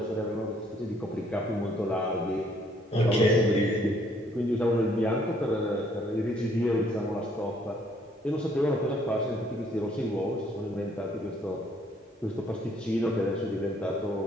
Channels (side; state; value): both; normal; correlation 0.65